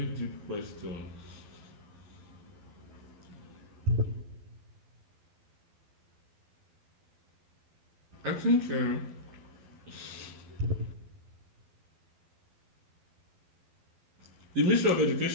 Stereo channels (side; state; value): left; late; 12 ms